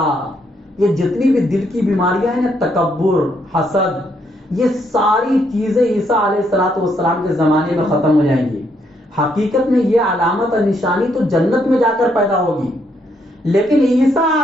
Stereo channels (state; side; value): normal; both; correlation 0.74